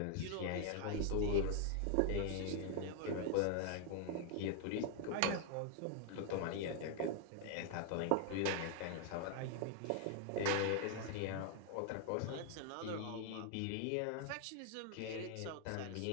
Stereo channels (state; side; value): different; both; correlation 0.00